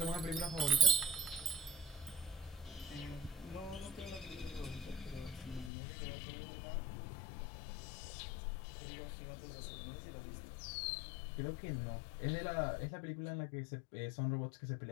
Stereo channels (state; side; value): drops out; right; at 5.7 s